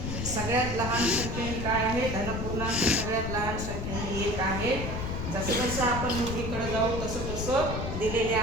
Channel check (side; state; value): left; noise; rumble, 4 dB below the sound